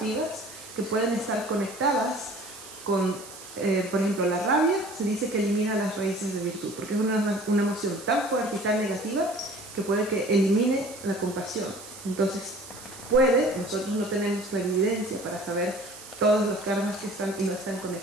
que pueden estar conectadas con, por ejemplo, la rabia. Se dice que elimina las raíces de virtud, porque es una emoción tan fuerte y tan negativa que puede que elimine la compasión. Entonces, nosotros no tenemos la evidencia para saber todos los karmas que están y no están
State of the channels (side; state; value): right; noise; hiss, 15 dB below the sound